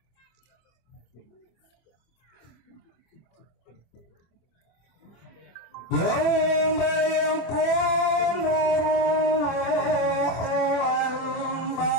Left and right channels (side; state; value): right; late; 24 ms